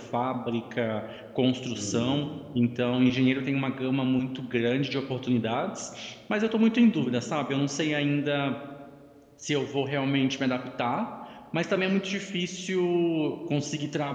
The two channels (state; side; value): identical; both; correlation 1.00